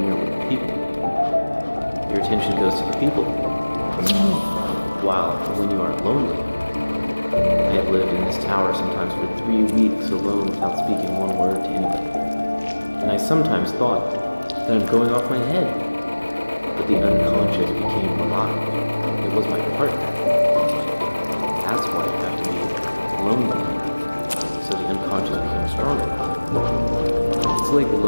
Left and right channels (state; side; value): inverted; both; correlation -1.00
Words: you're with people. Your attention goes to the people. While when you are lonely, I have lived in this tower sometimes for 3 weeks alone without speaking one word to anybody. And I sometimes thought that I'm going off my head. But the unconscious became alive. It was my partner. That's why you have to be lonely, so the unconscious becomes stronger. It's like